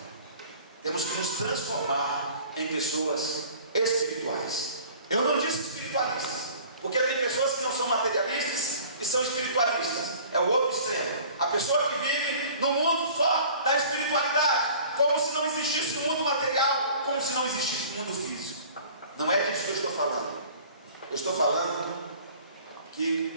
Temos que nos transformar em pessoas espirituais. Eu não disse espiritualistas, porque tem pessoas que não são materialistas e são espiritualistas. É o outro extremo. A pessoa que vive no mundo só da espiritualidade, como se não existisse o mundo material, como se não existisse o mundo físico. Não é disso que eu estou falando. Eu estou falando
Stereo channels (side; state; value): both; inverted; correlation -0.47